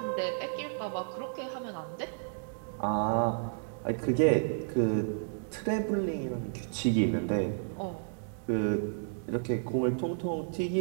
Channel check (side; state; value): left; silent; digital silence